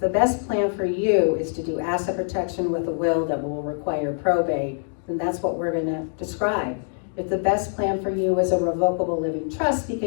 best plan for you is to do asset protection with a will that will require probate, then that's what we're going to describe. If the best plan for you is a revocable living trust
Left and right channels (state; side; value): silent; right; digital silence